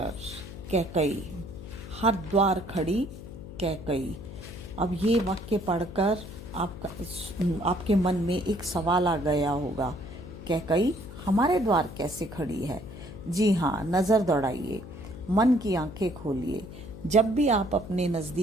कैकई, हर द्वार खड़ी कैकई। अब ये वाक्य पढ़कर आपके मन में एक सवाल आ गया होगा, कैकई हमारे द्वार कैसे खड़ी है? जी हाँ, नज़र दौड़ाइए, मन की आंखें खोलिए। जब भी आप अपने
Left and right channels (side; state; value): left; noise; hum, 13 dB below the sound